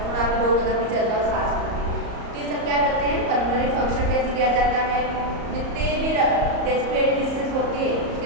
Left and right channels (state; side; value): late; left; 34 ms